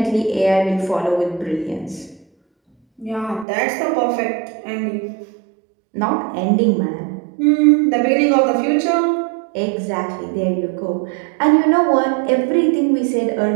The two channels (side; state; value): left; drops out; at 3.5 s